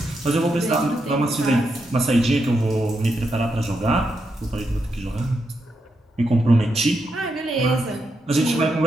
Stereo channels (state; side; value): normal; both; correlation 0.83